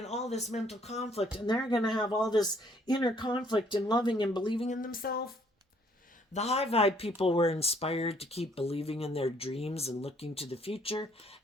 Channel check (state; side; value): normal; both; correlation 0.64